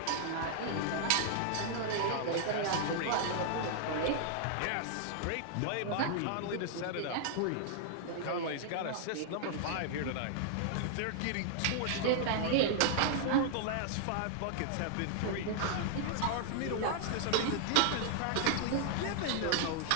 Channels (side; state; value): both; different; correlation -0.01